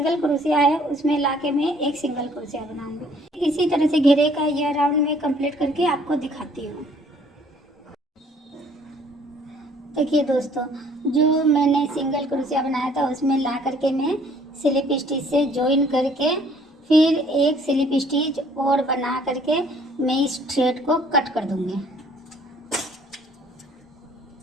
क्रोशिया है उसमें लाके मैं एक सिंगल क्रोशिया बनाऊंगी। इसी तरह से घेरे का यह राउंड मैं कंप्लीट करके आपको दिखाती हूँ। देखिए दोस्तों, जो मैंने सिंगल क्रोशिया बनाया था उसमें ला करके मैं स्लिप स्टिच से जॉइन करके फिर एक स्लिप स्टिच और बना करके मैं इस थ्रेड को कट कर दूंगी।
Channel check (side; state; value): both; normal; correlation 0.59